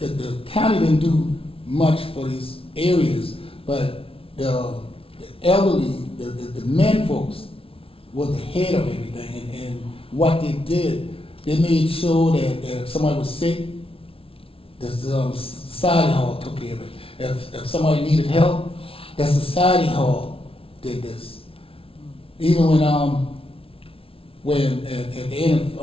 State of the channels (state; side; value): late; right; 0.26 ms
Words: county didn't do much for these areas, but the elderly, the men folks was the head of everything, and what they did, they made sure that if somebody was sick, the Society Hall took care of it. If somebody needed help, the Society Hall did this. Even when at the end